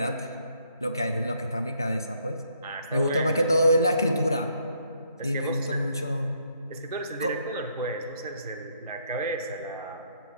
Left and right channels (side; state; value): both; inverted; correlation -0.70